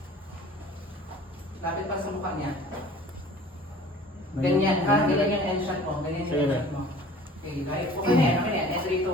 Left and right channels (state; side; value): normal; both; correlation 0.47